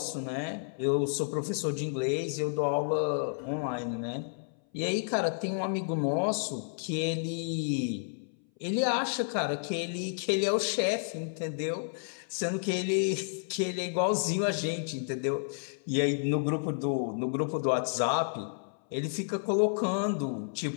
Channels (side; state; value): right; silent; 57 dB below the other